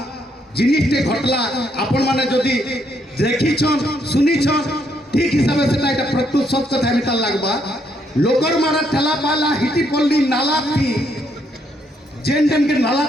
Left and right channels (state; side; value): normal; both; correlation 0.73